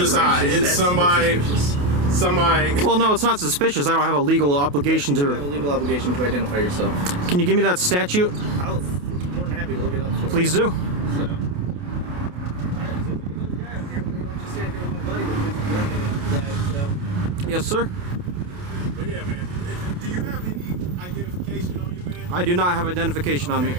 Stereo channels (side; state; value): left; late; 28 ms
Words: it's somebody. Well, no, it's not suspicious. I don't have a legal obligation You have a to. legal obligation to identify yourself. Can you give me that statute? I'll be more than happy to look it up for you. Please do. So. Alright, so we got another guy up here. We're gonna let you stand here with my buddy with his gun on his side, so. Yes, sir. But yeah, man. Do you have any identification on you, man? I do not have identification on me.